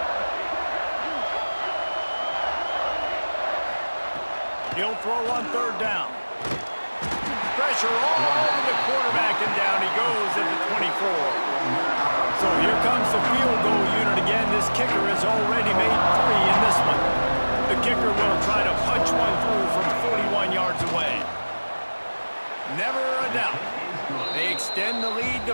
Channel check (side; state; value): both; inverted; correlation -1.00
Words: He'll throw on 3rd down. Pressure all over the quarterback, and down he goes at the 24. So here comes the field goal unit again. This kicker has already made 3 in this one. The kicker will try to punch one through from 41 yards away. Never a doubt. They extend the lead